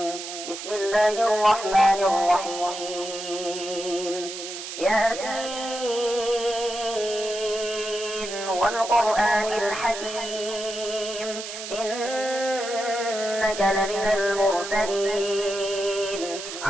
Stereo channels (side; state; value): right; noise; hiss, 8 dB below the sound